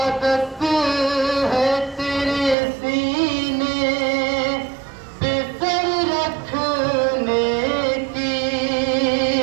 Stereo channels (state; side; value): drops out; left; at 2.6 s